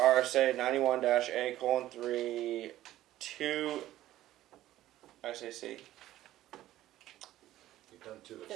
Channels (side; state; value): left; quieter; 14.4 dB